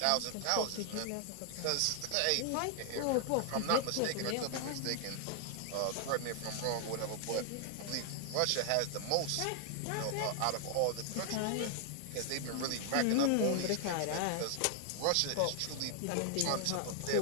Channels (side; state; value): both; different; correlation 0.00